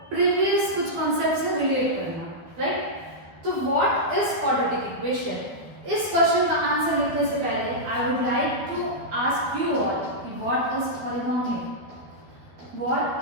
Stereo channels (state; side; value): late; left; 13 ms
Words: प्रीवियस कुछ कॉन्सेप्ट से रिलेट करना, राइट। तो व्हाट इज क्वाड्रेटिक इक्वेशन? इस क्वेश्चन का आंसर लिखने से पहले I would like to ask you all what is polynomial. What